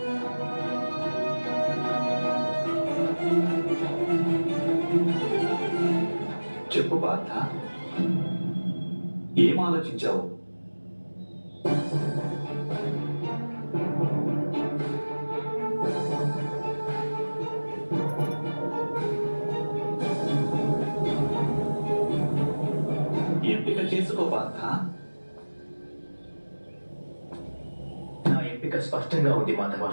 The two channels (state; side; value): inverted; both; correlation -1.00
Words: చెప్పు పార్థ, ఏం ఆలోచించావు? ఎంపిక చేసుకో పార్థ. నా ఎంపిక స్పష్టంగా ఉంది మాధవ.